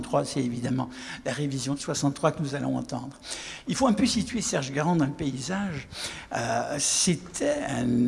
c'est évidemment la révision de 63 que nous allons entendre. Il faut un peu situer Serge Garand dans le paysage. C'était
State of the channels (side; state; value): both; identical; correlation 1.00